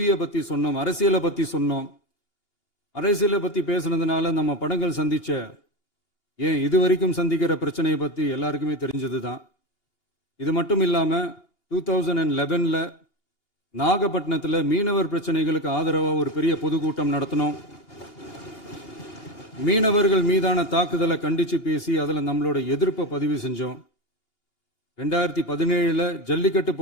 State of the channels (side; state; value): right; late; 2.8 ms